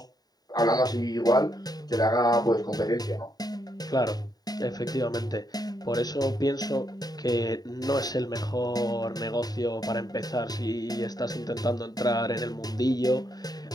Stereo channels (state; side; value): late; right; 0.19 ms